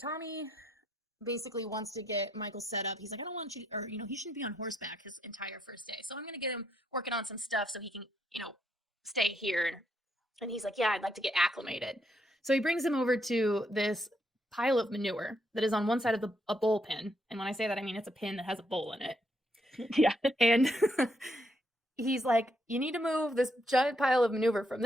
Tommy basically wants to get Michael set up. He's like, I don't want you, or, he shouldn't be on horseback his entire first day. So I'm going to get him working on some stuff so he can, stay here. And he's like, yeah, I'd like to get acclimated. So he brings him over to this pile of manure that is on one side of a bowl pin. And when I say that, I mean, it's a pin that has a bowl in it. Yeah. And he's like, you need to move this giant pile of manure from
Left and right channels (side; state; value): both; normal; correlation 0.76